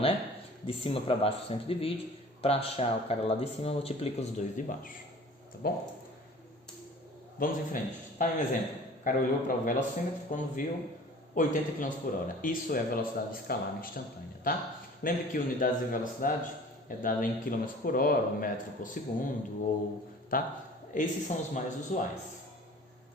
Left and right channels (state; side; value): normal; both; correlation 0.45